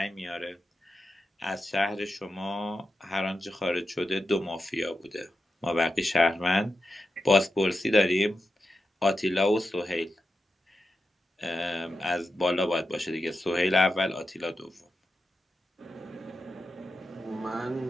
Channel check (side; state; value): both; normal; correlation 0.89